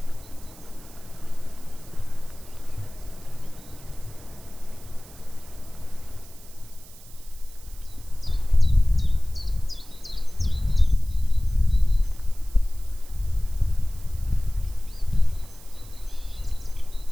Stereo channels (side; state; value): right; noise; hiss, 21 dB below the sound